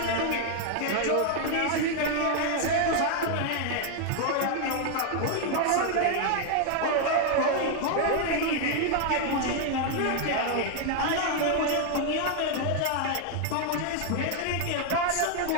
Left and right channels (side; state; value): both; different; correlation 0.00